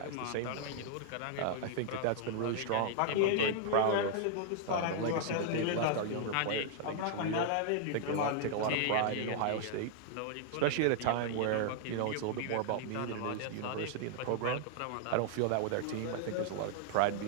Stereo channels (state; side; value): different; both; correlation -0.01